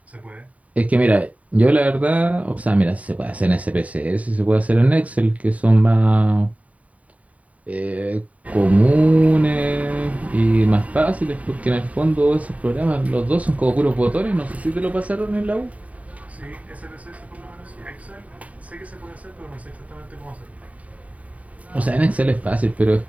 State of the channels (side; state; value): left; late; 0.069 ms